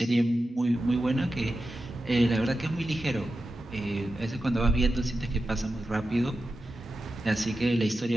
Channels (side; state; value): both; normal; correlation 0.91